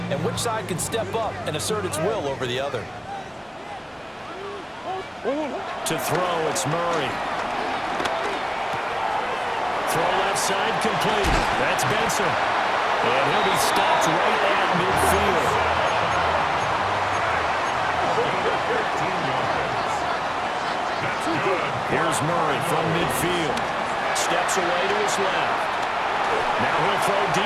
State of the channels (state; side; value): identical; both; correlation 1.00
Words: and which side can step up and assert its will over the other. To throw, it's Murray. Throw left side, complete. That's Benson. And he'll be stopped right at midfield. Here's Murray from midfield. Steps away to his left. Now he'll throw